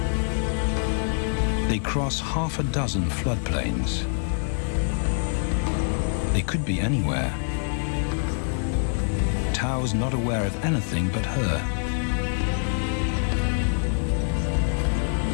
They cross half a dozen floodplains. They could be anywhere. Tau's not aware of anything but her.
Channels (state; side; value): silent; right; 62 dB below the other